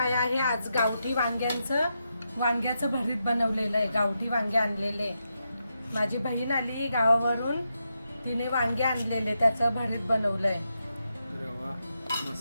आहे, आज गावठी वांग्याचं भरीत बनवलेलं आहे. गावठी वांगे आणलेले. माझी बहीण आली गावावरून, तिने वांगे आणलेले, त्याचं भरीत बनवलंय. अरे वा,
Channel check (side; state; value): both; inverted; correlation -0.85